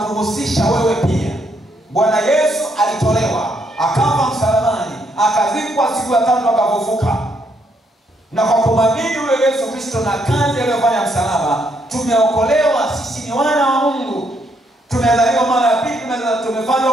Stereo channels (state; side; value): normal; both; correlation 0.74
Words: wewe pia. Bwana Yesu alitolewa, akafa msalabani, akazikwa, siku ya 3 akafufuka. Na kwa kumwamini yule Yesu Kristo na kazi aliyofanya msalaba, tumeokolewa. Sisi ni wana wa Mungu. Tumezaliwa mara ya pili, tumefanywa